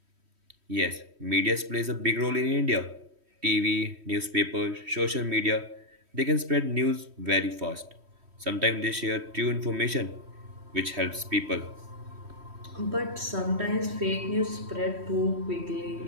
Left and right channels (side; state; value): left; late; 3.1 ms